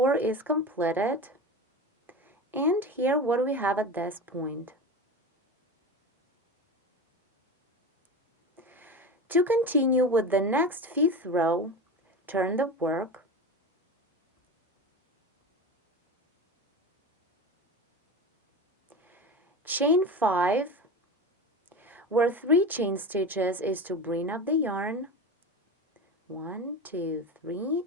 is completed, and here what do we have at this point? To continue with the next 5th row, turn the work, chain 5, where 3 chain stitches is to bring up the yarn, 1, 2, 3,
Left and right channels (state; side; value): normal; both; correlation 0.27